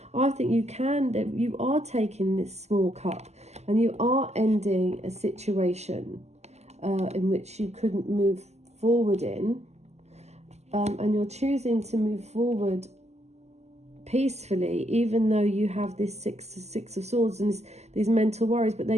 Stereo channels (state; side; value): late; left; 0.32 ms